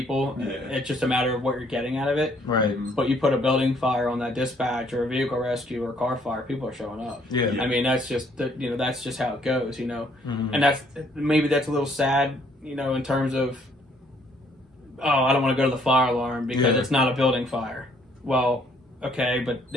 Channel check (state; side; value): normal; both; correlation 0.65